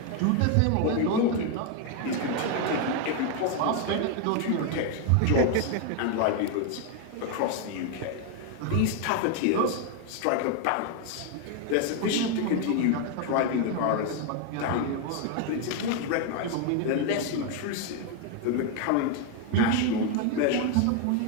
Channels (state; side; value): different; both; correlation 0.01